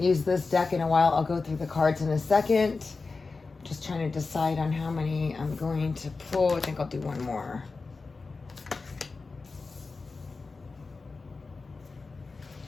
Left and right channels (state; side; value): quieter; right; 4.1 dB